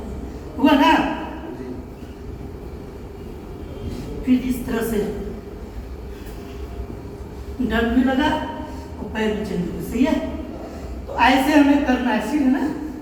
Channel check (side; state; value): both; identical; correlation 1.00